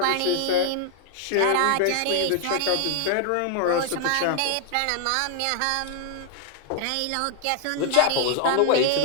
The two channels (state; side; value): different; both; correlation 0.00